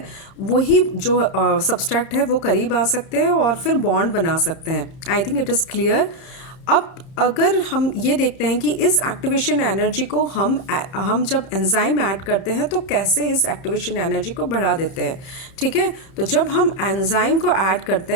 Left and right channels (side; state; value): right; late; 31 ms